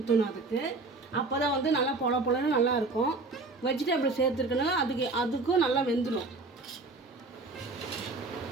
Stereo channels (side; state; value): left; quieter; 3.5 dB